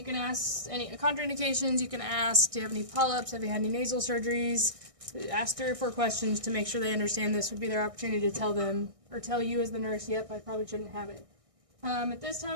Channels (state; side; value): late; left; 1.6 ms